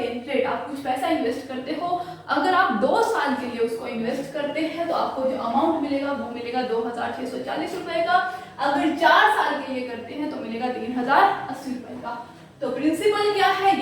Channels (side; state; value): both; identical; correlation 1.00